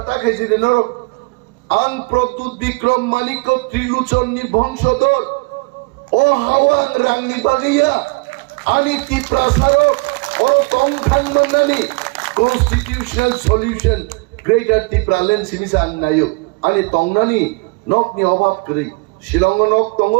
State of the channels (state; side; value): quieter; left; 29.2 dB